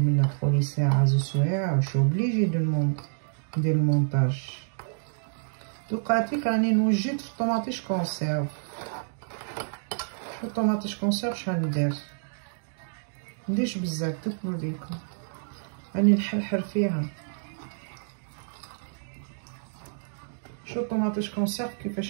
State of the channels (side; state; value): left; silent; digital silence